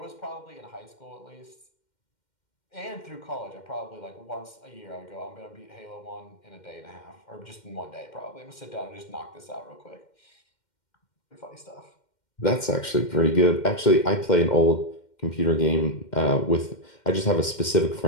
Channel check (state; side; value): late; right; 2.1 ms